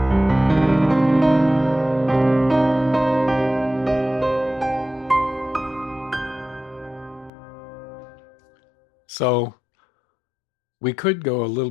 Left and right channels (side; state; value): right; drops out; at 7.3 s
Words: So we could go a little